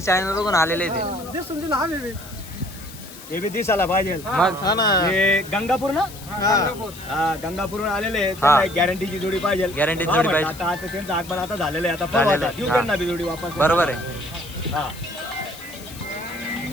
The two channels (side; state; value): left; noise; hiss, 17 dB below the sound